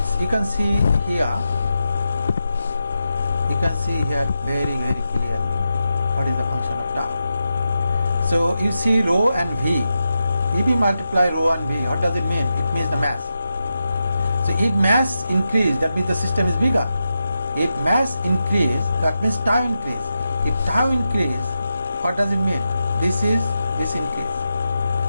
you can see here very clearly what is the function of tau. So you see rho and V. If we multiply rho and V, what does it mean? It means the mass. So if mass increase, that means the system is bigger. If mass increase, that means tau increase. If tau increase, what does it mean? This increase.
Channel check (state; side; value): inverted; both; correlation -0.89